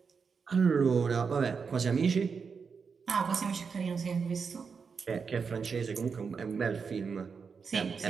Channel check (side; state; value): left; quieter; 5.6 dB